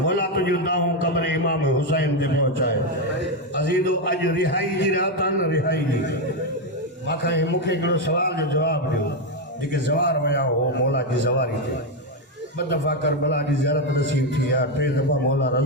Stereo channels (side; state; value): both; normal; correlation 0.06